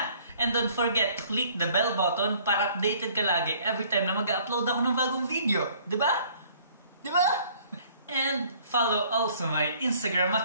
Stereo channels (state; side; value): inverted; both; correlation -0.57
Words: And don't forget to click the bell button para updated ka lagi every time na mag-upload ako ng bagong video. Diba? Diba? And follow also my Instagram